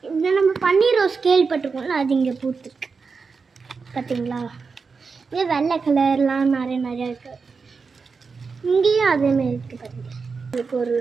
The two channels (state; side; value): quieter; left; 4.9 dB